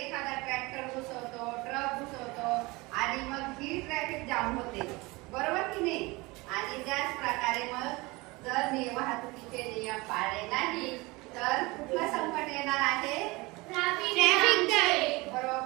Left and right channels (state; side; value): quieter; left; 23.5 dB